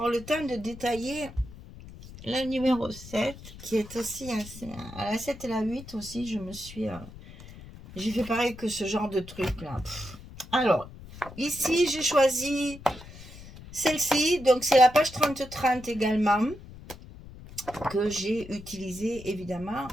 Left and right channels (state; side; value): noise; left; rumble, 16 dB below the sound